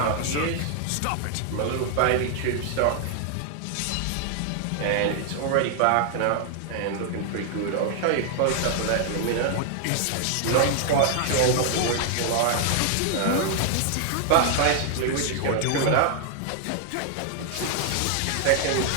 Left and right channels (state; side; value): different; both; correlation 0.00